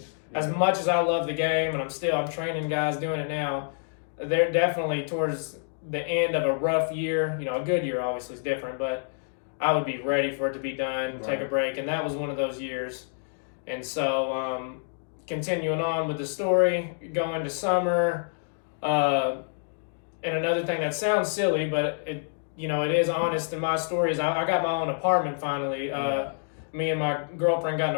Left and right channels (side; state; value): right; silent; digital silence